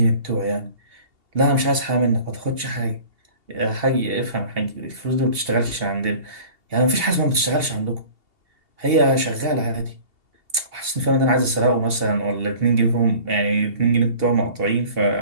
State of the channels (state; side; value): late; left; 2.8 ms